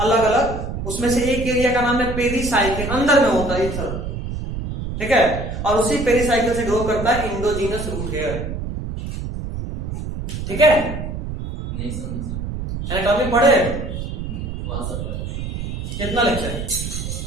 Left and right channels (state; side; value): noise; right; rumble, 5 dB below the sound